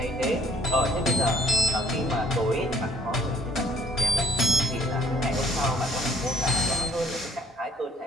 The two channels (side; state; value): both; normal; correlation 0.61